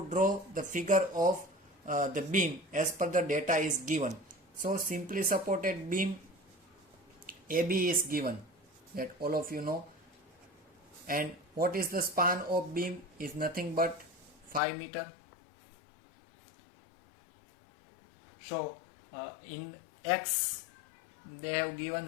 draw the figure of the beam as per the data is given. So simply supported beam AB is given, that all of you know, and what is the span of beam is nothing but 5 meter. So in X they have given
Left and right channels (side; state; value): right; drops out; at 14.6 s